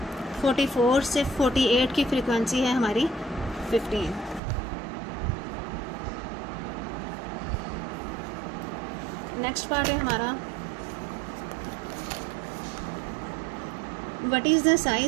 44 से 48 की फ्रीक्वेंसी है हमारी 15। नेक्स्ट पार्ट है हमारा what is the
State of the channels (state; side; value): drops out; left; at 4.4 s